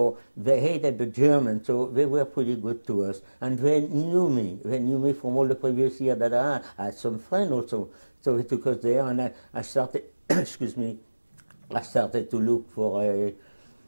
they hated the Germans, so they were pretty good to us. And they knew me. They knew me from all the previous years that I had some friends also. So they took us there, and I started, excuse me, I started to look for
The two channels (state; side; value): inverted; both; correlation -1.00